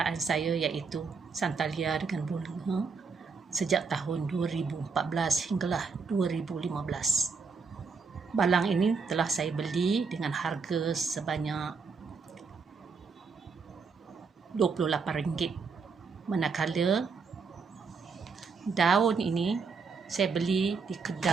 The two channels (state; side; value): quieter; left; 5.0 dB